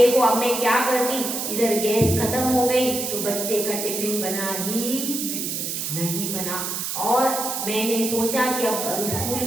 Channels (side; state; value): right; noise; hiss, 3 dB below the sound